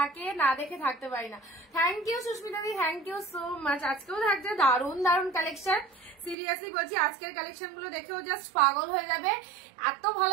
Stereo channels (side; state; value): left; drops out; at 6.4 s